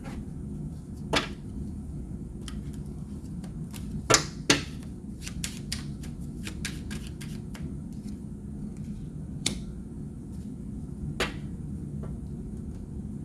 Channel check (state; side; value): identical; both; correlation 1.00